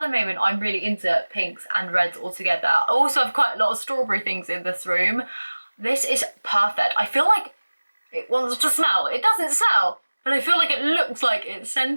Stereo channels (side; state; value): both; inverted; correlation -1.00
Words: moment I'm really into pinks and reds all together. I also have quite a lot of strawberry things in this room. This is perfect. I feel like it wants to smell. It doesn't smell, but I feel like it looks like it's